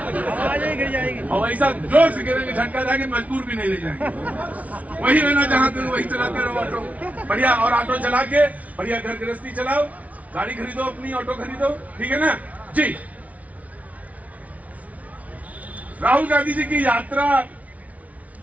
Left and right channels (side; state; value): left; late; 0.069 ms